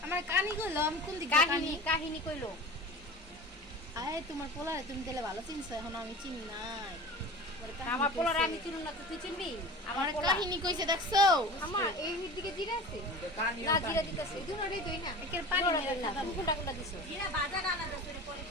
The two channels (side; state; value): both; normal; correlation 0.36